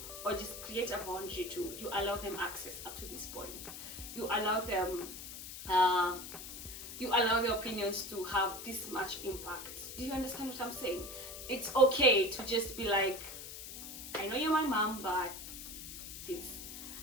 or just create a boundary to, you allow them access up to this point. You allow them, you allow their opinions to have this much impact. Do you understand what I'm saying? It's okay to just be like, I know you're my mom, but this.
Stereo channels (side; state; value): left; noise; hiss, 10 dB below the sound